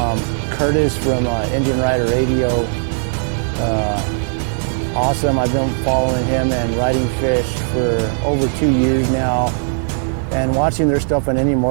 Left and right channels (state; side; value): silent; left; digital silence